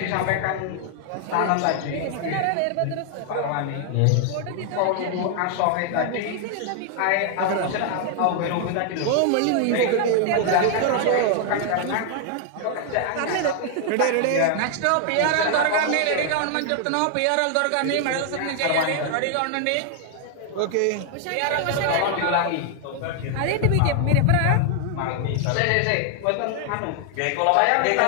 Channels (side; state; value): both; different; correlation 0.00